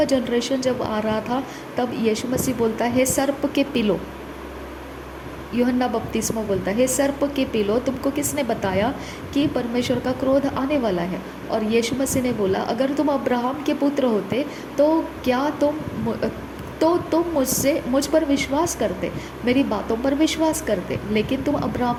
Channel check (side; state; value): both; identical; correlation 1.00